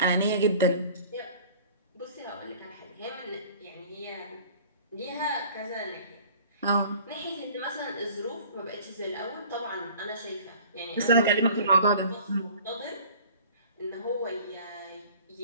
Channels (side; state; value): both; inverted; correlation -0.47